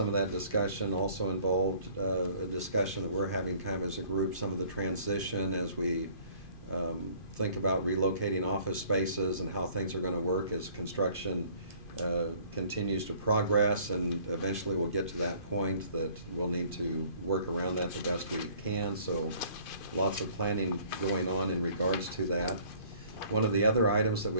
of that discussion also involved a discussion that we're having kind of as a group, some of the transition as we think about relocating office spaces and how things are going to work as construction continues to progress, and eventually we'll get to that point that we'll need to work around that the best we can. So lots of planning going on in regards to that. One of the other items that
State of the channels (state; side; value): late; right; 2.5 ms